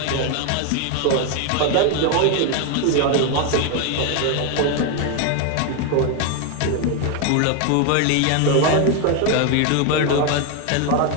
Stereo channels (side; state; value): both; different; correlation 0.01